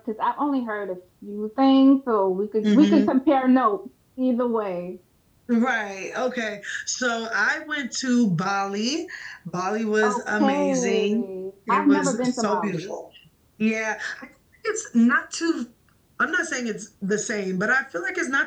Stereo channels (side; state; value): both; identical; correlation 1.00